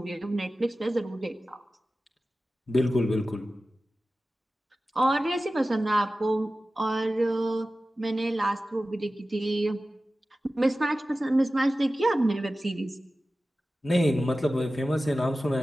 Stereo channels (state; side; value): normal; both; correlation 0.95